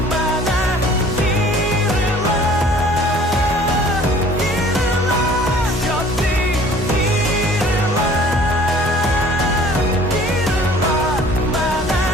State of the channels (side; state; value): both; normal; correlation 0.51